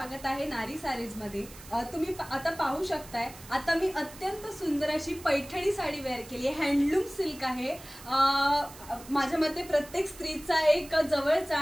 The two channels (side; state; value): right; noise; hiss, 18 dB below the sound